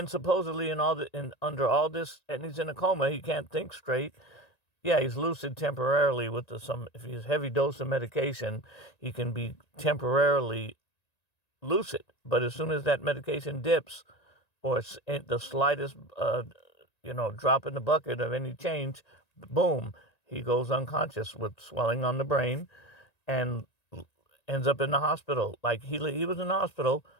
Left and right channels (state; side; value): late; right; 1.9 ms